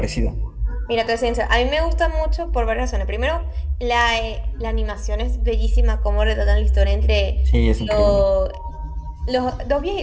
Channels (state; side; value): identical; both; correlation 1.00